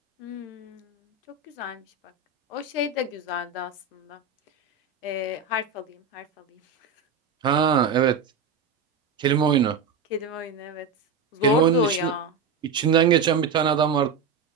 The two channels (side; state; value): left; quieter; 5.1 dB